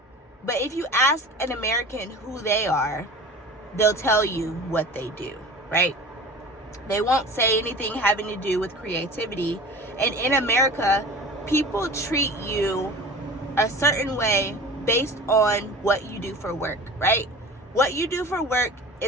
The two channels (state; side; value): normal; both; correlation 0.38